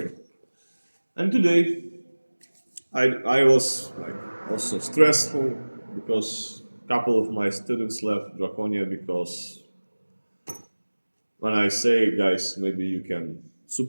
And today, I was like also stressful because a couple of my students left Draconia because when I say, guys, maybe you can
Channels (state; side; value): inverted; both; correlation -1.00